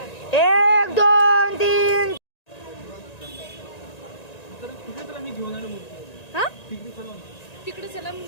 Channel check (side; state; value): right; late; 1.9 ms